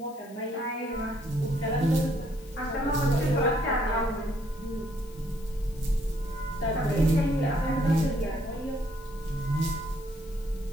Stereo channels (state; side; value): noise; left; hiss, 24 dB below the sound